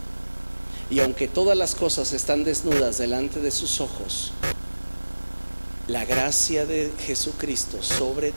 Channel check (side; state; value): both; inverted; correlation -1.00